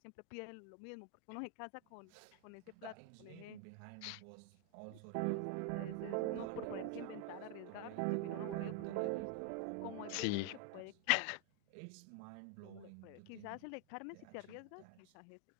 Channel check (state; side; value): different; both; correlation 0.00